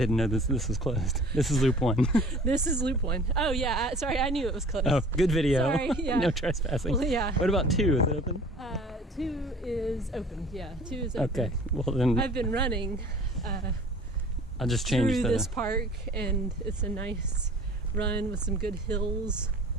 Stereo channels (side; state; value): both; normal; correlation 0.47